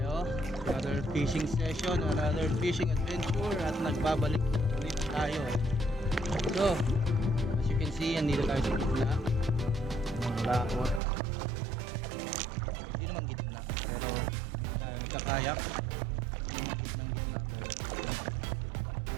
Another fishing session, another fishing adventure, at nagbabalik ulit tayo. So, as you can see, andito tayo sa gitna ng laot. Hindi naman gitna, pero tayo nagkakayak ng gitna, pero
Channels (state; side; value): drops out; left; at 11.0 s